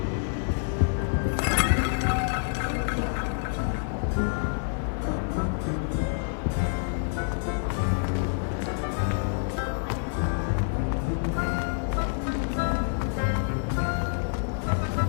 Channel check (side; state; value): right; silent; 60 dB below the other